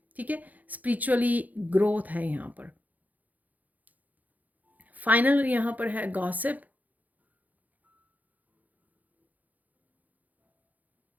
ठीक है, स्पिरिचुअली ग्रोथ है यहाँ पर। फाइनल यहाँ पर है गॉसिप,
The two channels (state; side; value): late; left; 0.080 ms